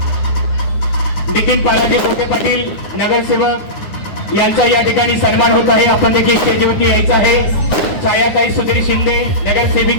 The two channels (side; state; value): right; late; 9.6 ms